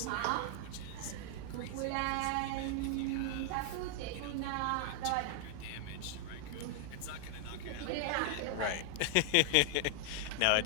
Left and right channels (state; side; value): different; both; correlation 0.00